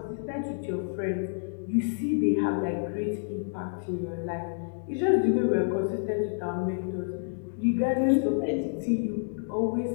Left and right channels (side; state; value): right; silent; digital silence